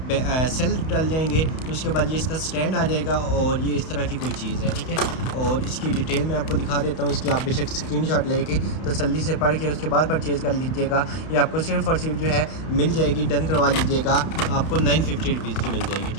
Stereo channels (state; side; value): late; right; 31 ms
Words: सेल डल जाएंगे, तो उसके बाद ये इसका स्टैंड आ जाएगा और ये इस तरह की कोई चीज़ है, ठीक है। और इसकी डिटेल मैं आपको दिखा देता हूँ। इसकी आप बेशक स्क्रीनशॉट लेके तसल्ली से पढ़ के उसके बाद परचेज़ कर लीजिएगा। ये आपको सिर्फ़ और सिर्फ जो है मिल जाएगी, डन करवा लीजिएगा, आपको 950 रुपीज़ की मिल जाएगी,